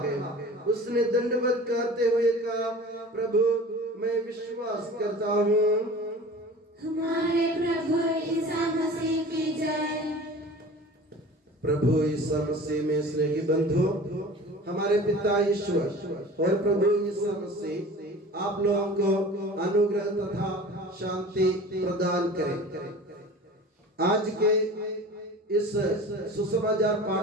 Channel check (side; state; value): both; normal; correlation 0.40